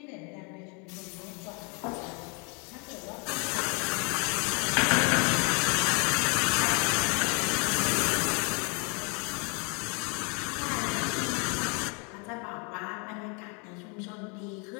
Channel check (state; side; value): quieter; right; 34.0 dB